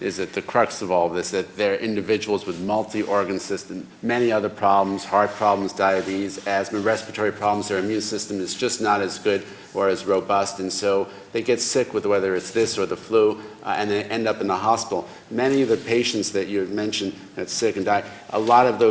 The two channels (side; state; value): both; identical; correlation 1.00